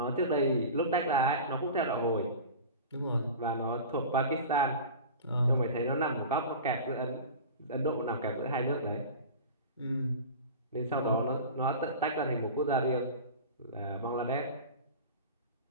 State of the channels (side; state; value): both; inverted; correlation -0.34